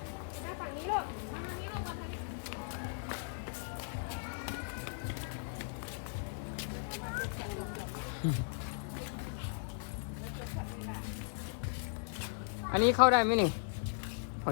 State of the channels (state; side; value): silent; right; 53 dB below the other